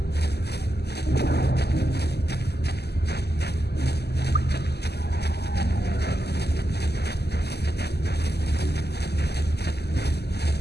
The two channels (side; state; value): right; late; 0.48 ms